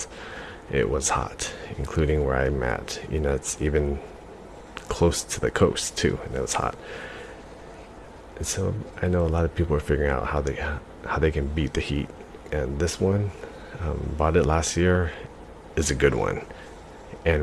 It was hot, including where I'm at. You know, it's even close to the coast too, and it was hot. And so I know a lot of people are figuring out how they can beat the heat. And this one, bought it last year, is a good one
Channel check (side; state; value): both; identical; correlation 1.00